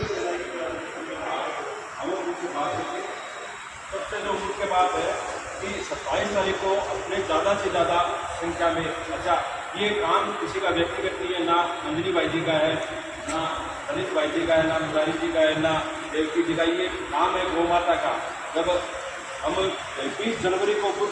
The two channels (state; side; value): identical; both; correlation 1.00